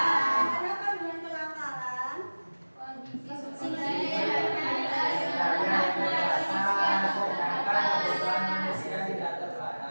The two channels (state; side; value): inverted; both; correlation -1.00